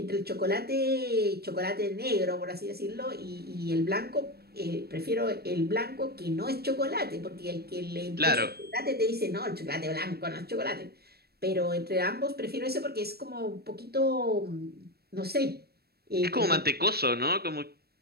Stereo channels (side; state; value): left; late; 0.46 ms